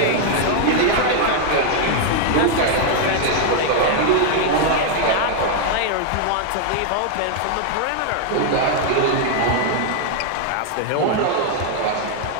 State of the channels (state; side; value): different; both; correlation 0.00